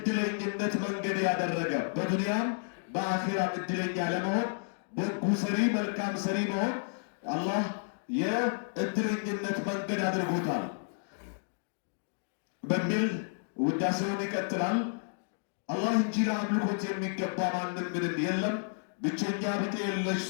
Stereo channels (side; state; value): right; silent; digital silence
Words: መንገድ ያደረገ፣ በዱንያም በአኺራም እድለኛ ለመሆን በጎ ሰሪ፣ መልካም ሰሪ መሆን አላህ የእድለኝነት መንገድ አድርጎታል በሚል ውዳሴውን ይቀጥላል። አላህ እንጂ ለአምልኮት የሚገባ ማንም ምንም የለም፣ ብቸኛ ብጤ የለሽ